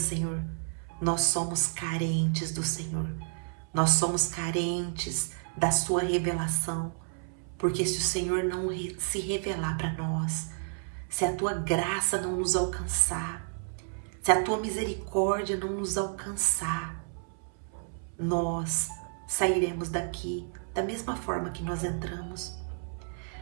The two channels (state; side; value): silent; left; 57 dB below the other